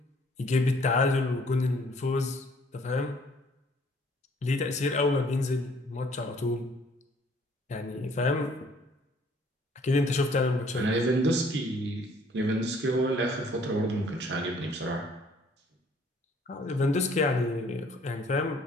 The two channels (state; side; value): normal; both; correlation 0.60